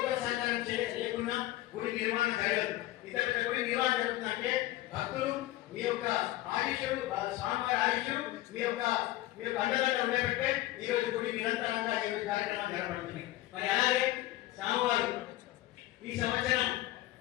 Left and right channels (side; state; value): right; quieter; 16.4 dB